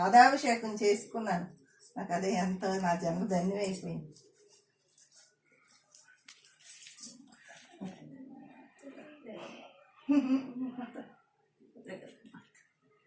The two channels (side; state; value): both; identical; correlation 1.00